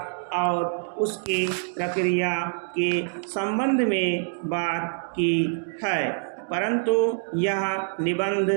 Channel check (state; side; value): silent; left; digital silence